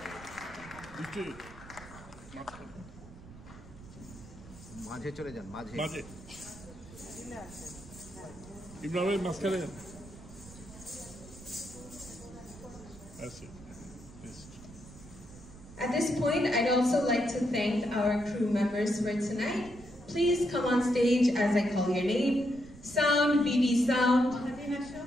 মাঝে চলে যান, মাঝে। ইমরানের মাঝখানে। At this point, I'd also like to thank our crew members for tonight. Please come on stage as I call your name. Sound, BB Sound.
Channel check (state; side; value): noise; right; rumble, 18 dB below the sound